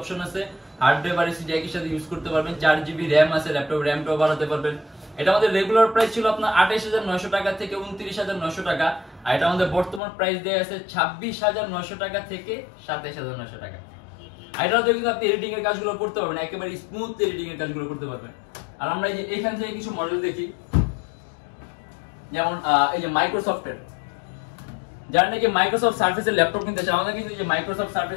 আছে, হার্ড ড্রাইভ আর এসএসডি একই সাথে ইউজ করতে পারবেন, 4GB RAM আছে, ল্যাপটপ র‍্যামটাও বাড়াতে পারবেন। এটা আমাদের রেগুলার প্রাইস ছিল আপনার 28,900 টাকা থেকে 29,900 টাকা, আর এটা আমাদের বর্তমান প্রাইস দেয়া আছে 26,900 টাকা থেকে 27,900 টাকা। আর এটাতে কিন্তু আপনি এডিটিং এর কাজগুলো করতে পারবেন, একেবারে স্মুথ এডিটিং এর কাজগুলো করতে পারবেন। আর আমরা এই যে এখান থেকে কিছু মডেল দেখি, যেমন এই যে মাইক্রোসফটের, যারা নাকি মাইক্রোসফট সার্ফেসের ল্যাপটপ কিনতে চান, আমাদের কিন্তু যে মাইক্রোসফট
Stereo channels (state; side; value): drops out; right; at 10.0 s